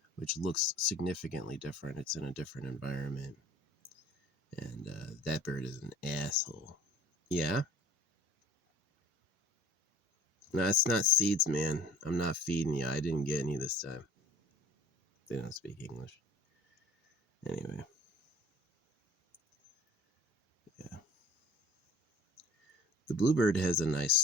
which looks significantly different. It's in a different environment. And that bird is an asshole. Yeah? No, it's not seeds, man. I'm not feeding you. I didn't get any this time. They don't speak English. Anyway, yeah. The bluebird has a nice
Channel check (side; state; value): both; normal; correlation 0.47